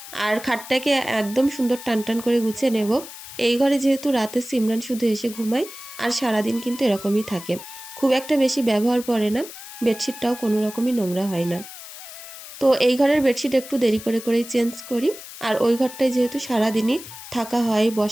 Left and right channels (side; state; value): left; noise; hiss, 14 dB below the sound